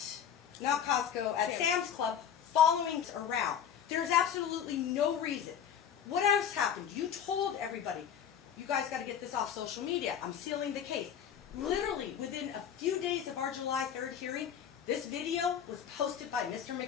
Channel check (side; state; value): right; quieter; 8.6 dB